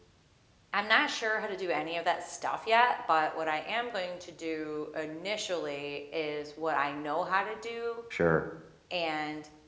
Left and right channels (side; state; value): both; identical; correlation 1.00